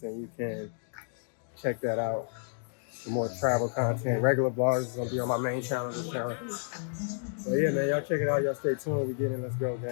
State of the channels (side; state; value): right; silent; digital silence